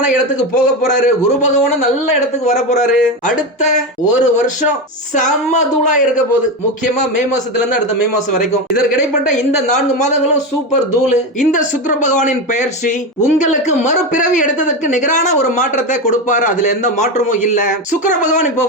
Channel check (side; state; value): both; normal; correlation 0.17